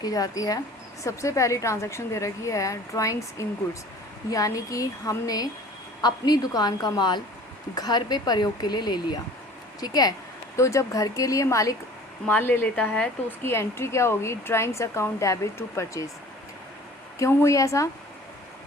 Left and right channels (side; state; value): both; normal; correlation 0.47